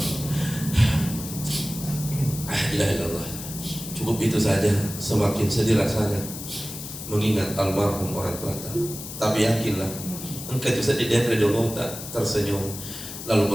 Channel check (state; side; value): noise; left; hiss, 10 dB below the sound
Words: La ilaha illallah. Cukup itu saja. Semakin sedih rasanya mengingat almarhum orang tua. Tapi yakinlah, engkau itu sedih dan redolo tak tersenyum